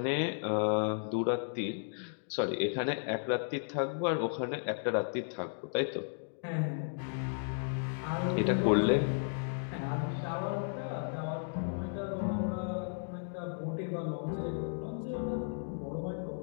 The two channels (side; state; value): right; silent; digital silence